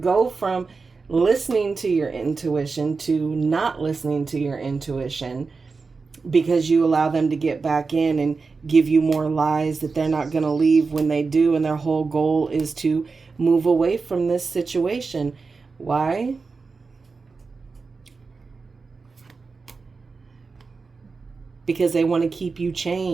from listening to your intuition to not listening to your intuition, because you allow them to get back in and give you more lies that they're not going to leave when they do. And their whole goal is to move away from this situation. Why? Because they want to keep you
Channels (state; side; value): quieter; left; 4.4 dB